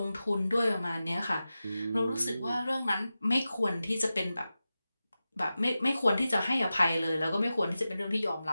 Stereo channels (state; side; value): inverted; both; correlation -0.94